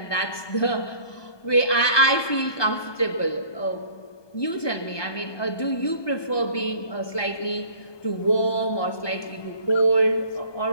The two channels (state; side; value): late; right; 1.2 ms